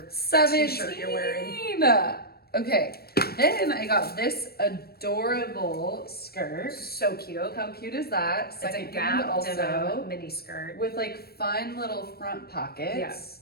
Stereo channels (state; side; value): late; right; 0.45 ms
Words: 17. t-shirt you're wearing. Okay, then I got this adorable skirt. So cute. How cute is that? It's a Secondhand Gap denim mini skirt. with like fun little front pockets.